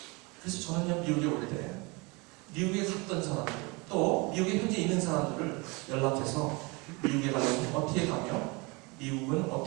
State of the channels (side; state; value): left; quieter; 27.6 dB